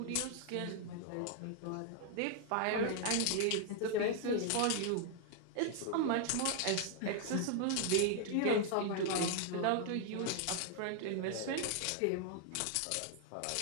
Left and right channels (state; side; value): different; both; correlation 0.00